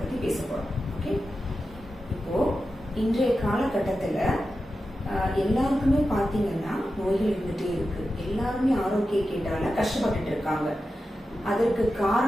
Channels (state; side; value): normal; both; correlation 0.91